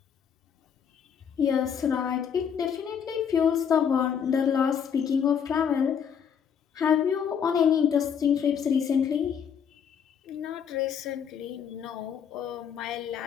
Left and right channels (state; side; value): quieter; right; 7.6 dB